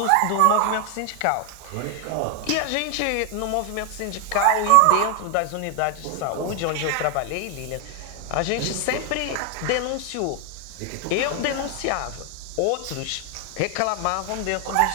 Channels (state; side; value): different; both; correlation 0.01